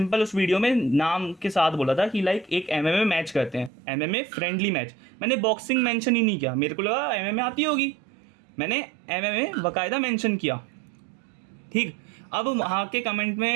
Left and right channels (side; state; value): left; drops out; at 3.7 s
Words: उस वीडियो में नाम के साथ बोला था कि लाइक एक एमएमए मैच करते हैं, एमएमए फ्रेंडली मैच। मैंने बॉक्सिंग मेंशन ही नहीं किया, मेरे को लगा एमएमए आती होगी, मैंने एमएमए बाकायदा मेंशन किया। ठीक, अब वहाँ के कमेंट